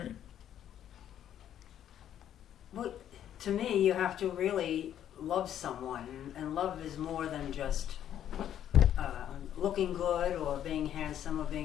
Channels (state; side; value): quieter; right; 10.5 dB